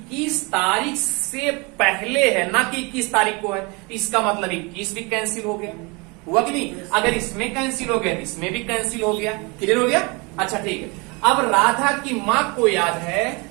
तारीख से पहले है ना कि 21 तारीख को है। इसका मतलब 21 भी कैंसिल हो गया, हुआ कि नहीं? अगर इसमें कैंसिल हो गया तो इसमें भी कैंसिल हो गया। क्लियर हो गया? अच्छा ठीक है। अब राधा की मां को याद है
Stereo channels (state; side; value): quieter; left; 28.4 dB